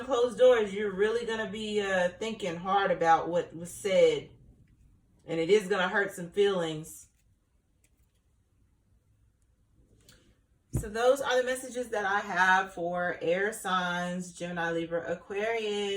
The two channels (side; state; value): both; identical; correlation 1.00